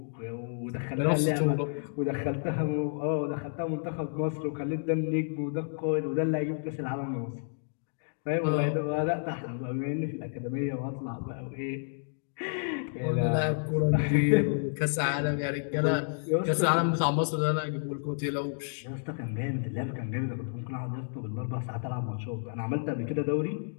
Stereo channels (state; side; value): silent; right; digital silence